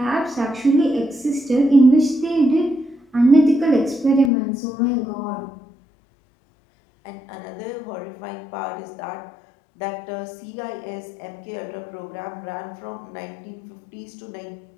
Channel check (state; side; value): drops out; right; at 4.3 s